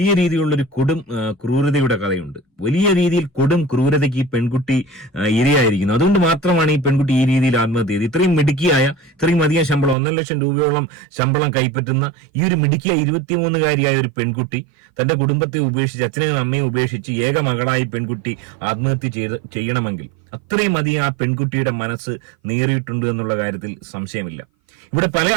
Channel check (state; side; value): drops out; left; at 10.0 s